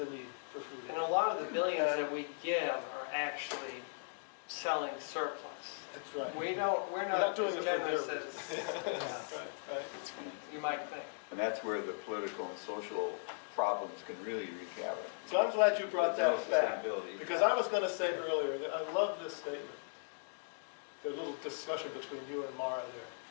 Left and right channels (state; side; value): silent; right; digital silence